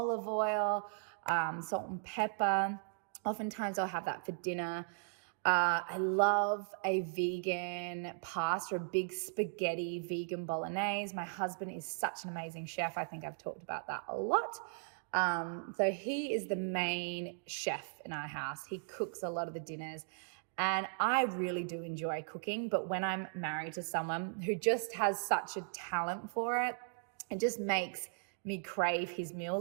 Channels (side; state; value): left; silent; digital silence